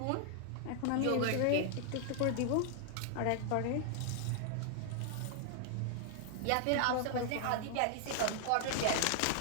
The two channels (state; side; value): different; both; correlation 0.00